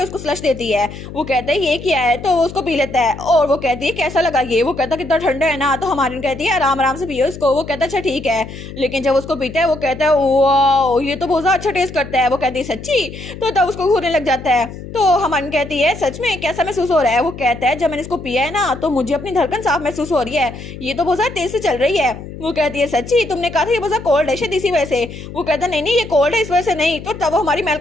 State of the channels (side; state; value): left; noise; hum, 12 dB below the sound